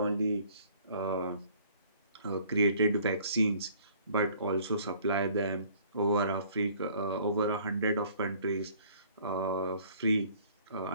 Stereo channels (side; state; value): both; inverted; correlation -0.55